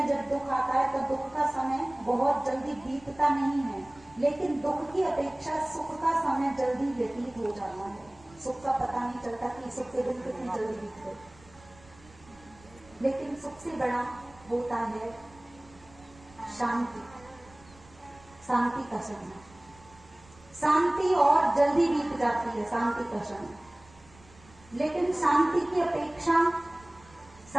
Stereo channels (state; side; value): noise; right; rumble, 25 dB below the sound